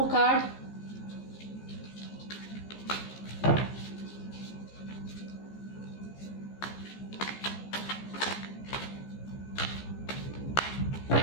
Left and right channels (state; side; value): late; right; 15 ms